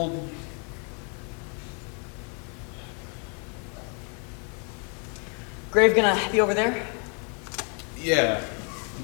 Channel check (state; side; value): quieter; right; 38.3 dB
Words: Grave gonna be over there? Yeah,